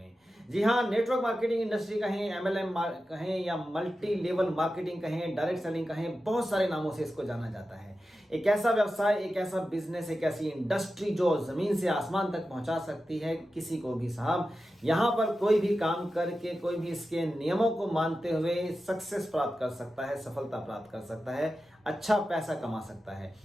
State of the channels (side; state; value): both; normal; correlation 0.92